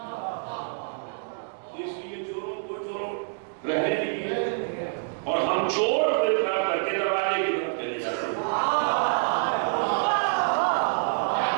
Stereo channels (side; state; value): left; silent; digital silence